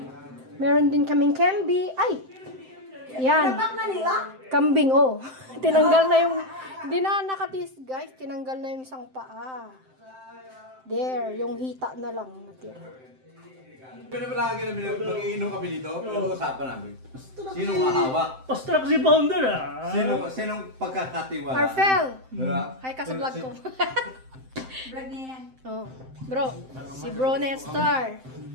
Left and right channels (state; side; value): late; left; 7.7 ms